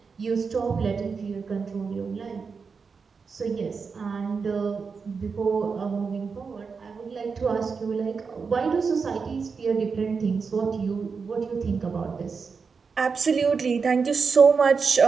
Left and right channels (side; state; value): left; quieter; 5.3 dB